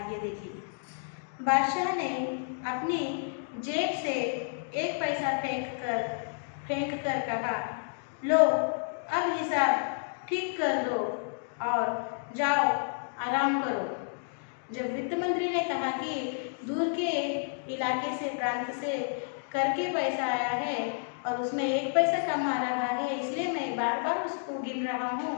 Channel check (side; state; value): right; silent; digital silence